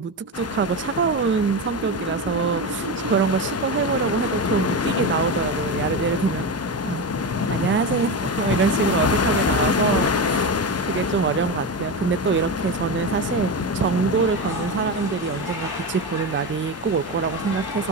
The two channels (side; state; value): both; normal; correlation 0.18